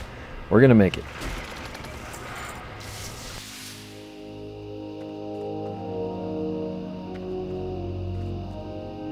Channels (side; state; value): both; identical; correlation 1.00